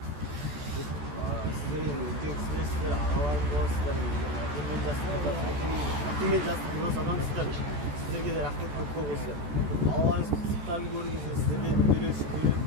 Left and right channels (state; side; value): late; left; 14 ms